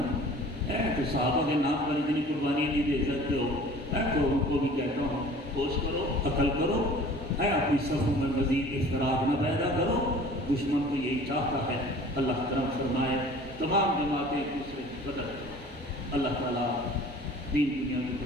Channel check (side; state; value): both; normal; correlation 0.46